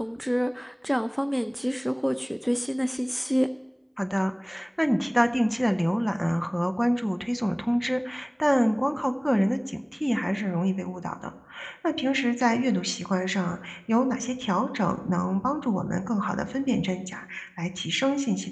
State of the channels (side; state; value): both; identical; correlation 1.00